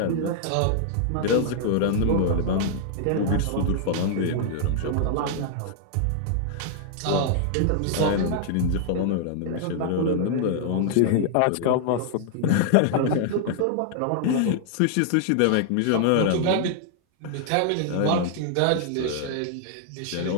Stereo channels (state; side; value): different; both; correlation -0.01